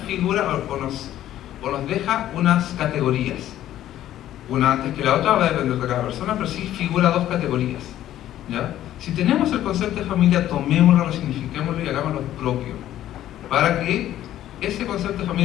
o nos deja unas categorías. Una antes que la otra va a depender de cada persona, pero sí figura dos categorías, ¿ya? Si tenemos el concepto de familia, tomémoslo, resignifiquémoslo y hagámoslo propio, para que ese concepto de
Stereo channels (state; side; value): quieter; right; 12.7 dB